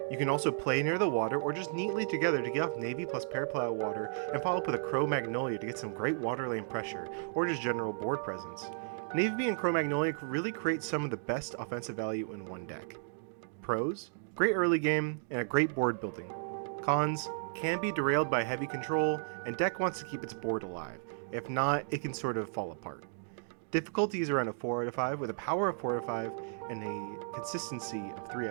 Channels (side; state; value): left; silent; digital silence